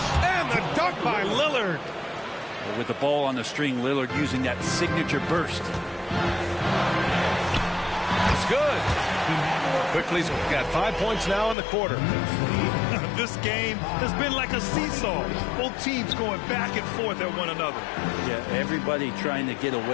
And the dunk by Lillard. With the ball on the string, Lillard using that signature burst. It's good. Quickly's got 5 points now in the quarter. This game has been like a seesaw. Both teams going back and forth at one another. Yeah, everybody trying to get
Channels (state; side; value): drops out; right; at 11.6 s